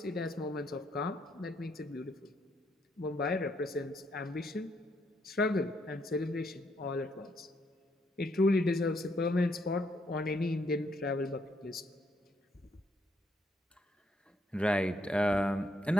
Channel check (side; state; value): both; normal; correlation 0.73